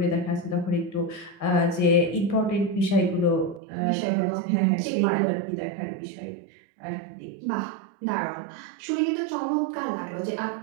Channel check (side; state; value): left; drops out; at 3.6 s